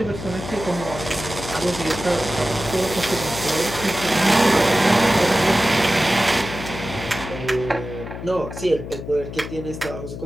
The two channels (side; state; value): left; noise; hum, 9 dB below the sound